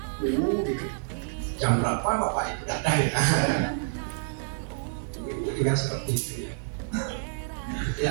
Jam berapa Bapak itu datang ya? Itu juga seperti itu ya. Jadi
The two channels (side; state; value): left; silent; 59 dB below the other